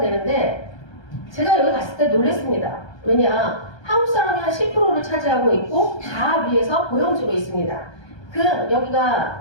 제가 여기 갔을 때 놀랐습니다. 왜냐? 한국 사람이 한 10%를 차지하고 있고 다 위에서 고용주로 있습니다.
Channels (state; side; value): late; right; 1.2 ms